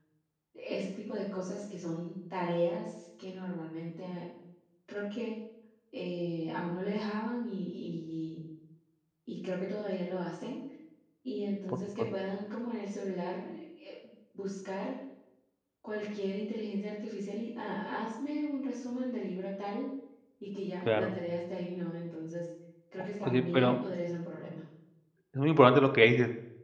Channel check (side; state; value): both; identical; correlation 1.00